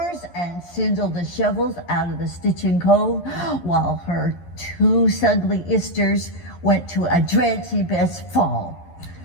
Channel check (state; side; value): late; right; 11 ms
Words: and sindle the shovels out of the stitching cove, while her two sugly isters went to a dreadful best fall.